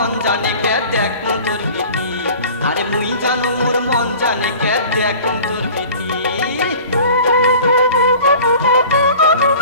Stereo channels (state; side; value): inverted; both; correlation -0.43